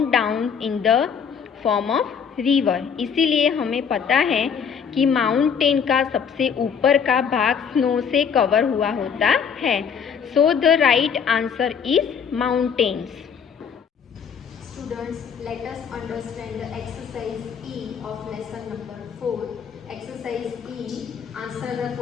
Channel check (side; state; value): right; quieter; 6.9 dB